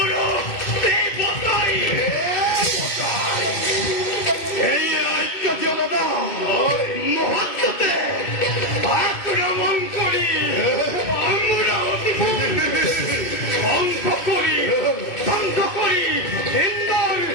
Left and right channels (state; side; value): late; right; 2.6 ms